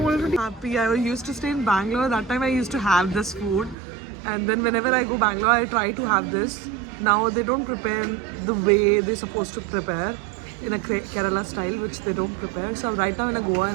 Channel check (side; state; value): left; drops out; at 3.8 s